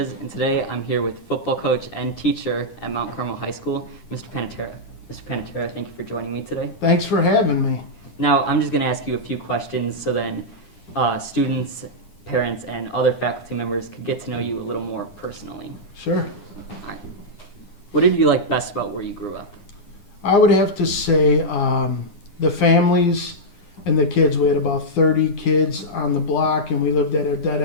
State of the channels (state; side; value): late; right; 9.9 ms